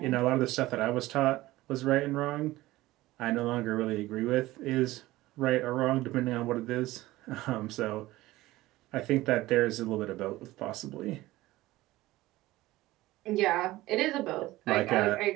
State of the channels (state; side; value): quieter; left; 17.7 dB